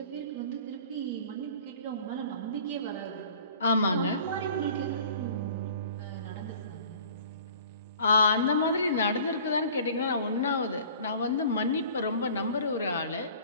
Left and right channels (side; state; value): both; inverted; correlation -0.47